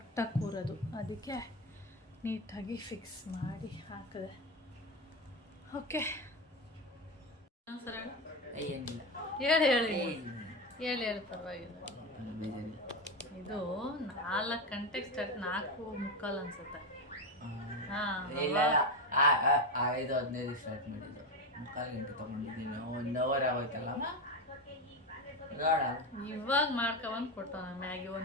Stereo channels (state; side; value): normal; both; correlation 0.15